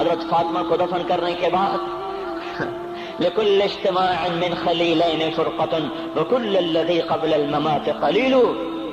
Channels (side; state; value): both; identical; correlation 1.00